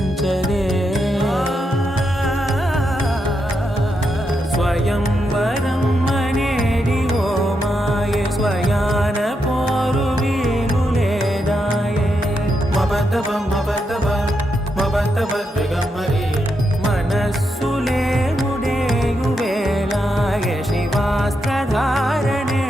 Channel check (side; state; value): both; normal; correlation 0.83